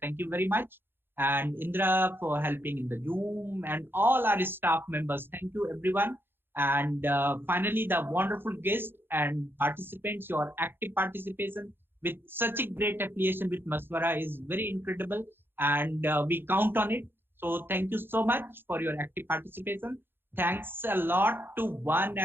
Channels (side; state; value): left; late; 0.10 ms